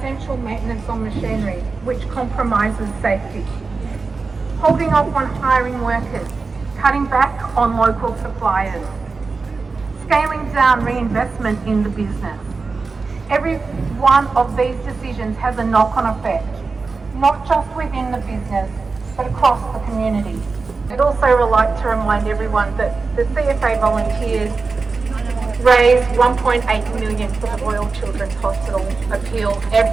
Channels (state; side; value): quieter; left; 4.2 dB